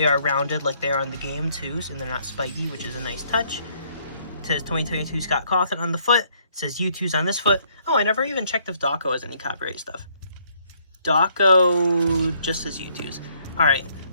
are rounded like they are in the game too, and they're not spiky, which is a nice touch. It says 2022 Scott Cawthon on the foot. It says YouToos on this foot. Oh, I never even checked if DAWKO has any copyright stuff. DAWKO just says YouToos. Alright,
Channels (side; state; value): both; inverted; correlation -0.67